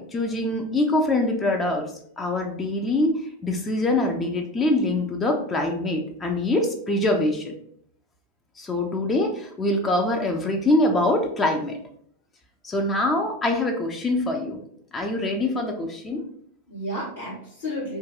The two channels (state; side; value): normal; both; correlation 0.38